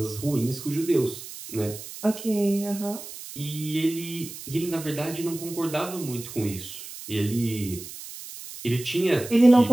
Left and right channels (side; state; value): right; noise; hiss, 12 dB below the sound